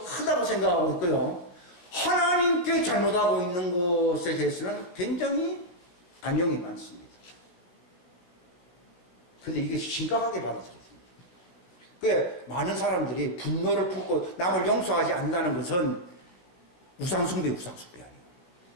크다고 생각하고 있고요. 하나님께 잘못하고 있는 것에 대해서는 굉장히 반영이 많습니다. 근데 이게 심각하게 받아들여집니다. 그 많은 사람들이 분노를 품고 남을 용서하지 않는다는 것은 우상숭배 아니에요.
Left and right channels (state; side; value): late; right; 17 ms